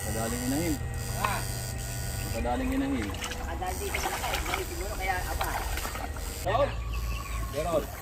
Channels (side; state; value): both; identical; correlation 1.00